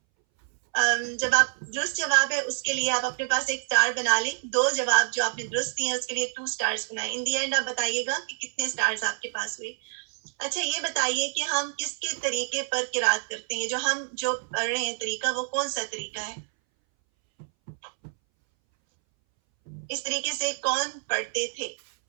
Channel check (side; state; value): left; silent; 60 dB below the other